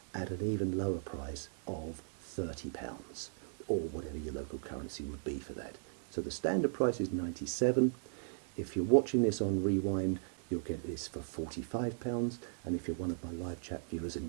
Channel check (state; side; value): silent; left; digital silence